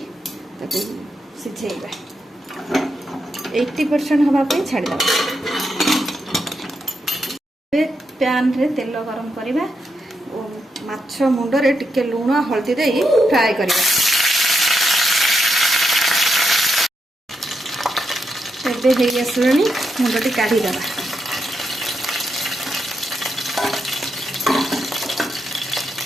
सिझेबा। 80% हवा पे छाड़ दबा। पैन रे तेल गरम करिबा ओ माछ मुंड रे टिके लूण हलदी दे फ्राई करिबा। एबे हेई आसलानी मुंडटी काढी दबा।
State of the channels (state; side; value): normal; both; correlation 0.83